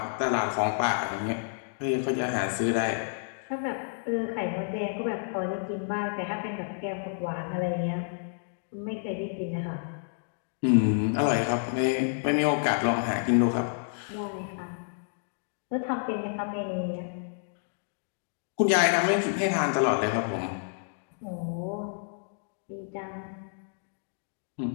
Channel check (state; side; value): silent; right; digital silence